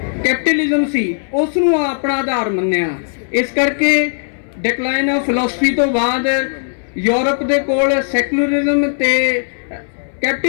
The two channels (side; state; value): right; silent; 61 dB below the other